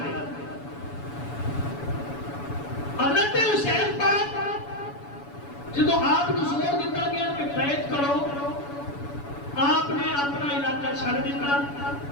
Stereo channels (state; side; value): late; right; 7.0 ms